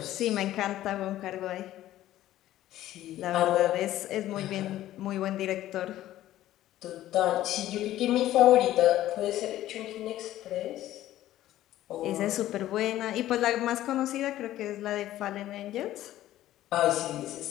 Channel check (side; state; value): right; quieter; 13.9 dB